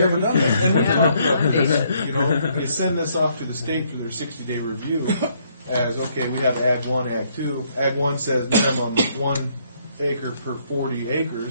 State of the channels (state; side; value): inverted; both; correlation -0.69